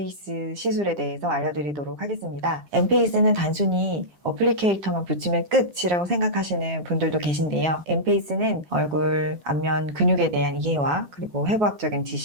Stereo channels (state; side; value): late; left; 9.9 ms